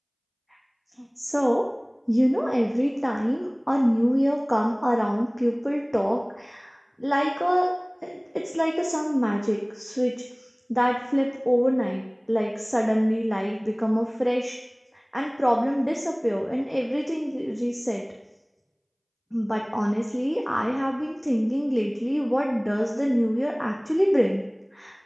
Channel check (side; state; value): both; identical; correlation 1.00